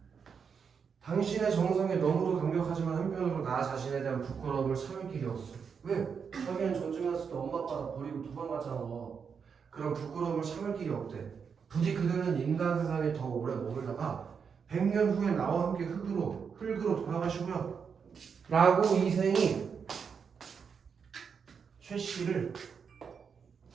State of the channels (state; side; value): quieter; left; 6.4 dB